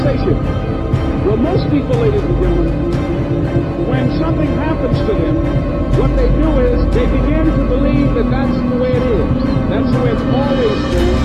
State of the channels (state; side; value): identical; both; correlation 1.00